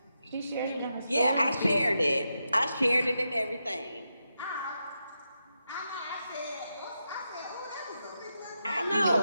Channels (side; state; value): both; inverted; correlation -0.86